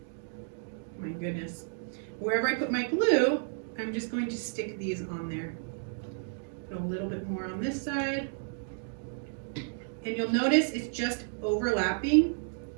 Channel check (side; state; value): left; silent; digital silence